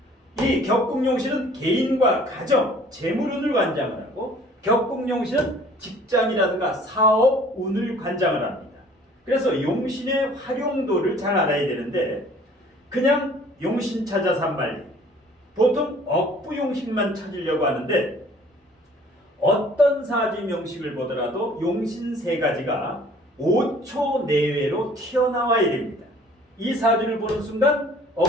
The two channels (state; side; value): normal; both; correlation 0.53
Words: 이 격국용신은 개인과 가정, 재물운을 관장을 하고, 격국용신은 직장이라든가 사업 운을 관장을 합니다. 그래서 용신의 활용도를 잘 알아야 되는데 그냥 용신 찾아서 한 말이 보통 억부용신만 찾으려고 하는데 어떤 사주 명식을 보더라도 용신 세 가지가 5초 내외로 튀어나와야 됩니다. 이 사주를 보는 순간